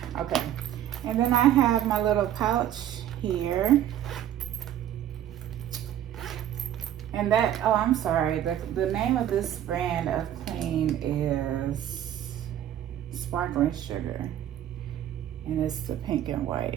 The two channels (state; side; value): quieter; left; 11.2 dB